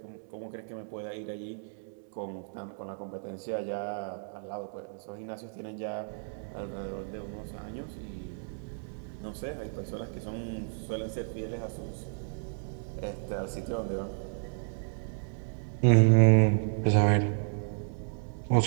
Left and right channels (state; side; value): silent; left; digital silence